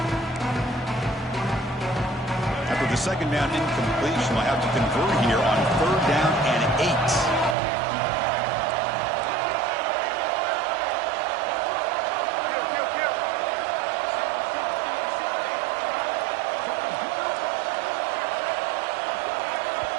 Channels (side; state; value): left; drops out; at 7.6 s